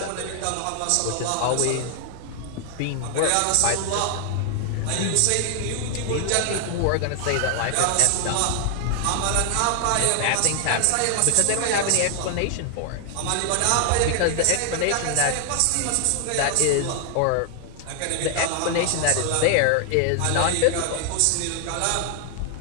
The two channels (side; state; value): both; different; correlation 0.00